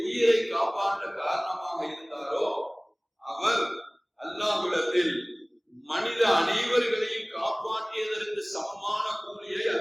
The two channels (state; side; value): identical; both; correlation 1.00